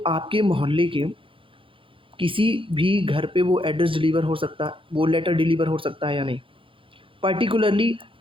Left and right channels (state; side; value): late; left; 0.25 ms